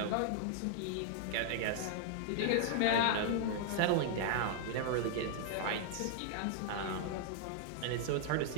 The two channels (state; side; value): different; both; correlation -0.01